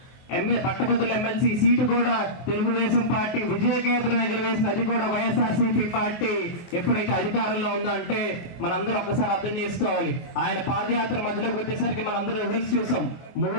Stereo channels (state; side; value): late; right; 24 ms